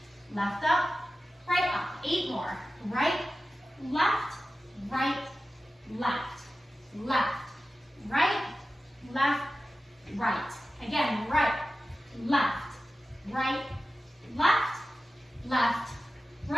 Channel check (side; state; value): both; normal; correlation 0.94